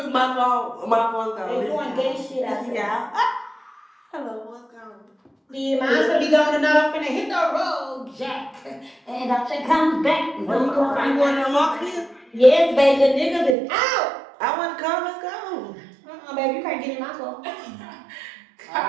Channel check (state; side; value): drops out; left; at 13.6 s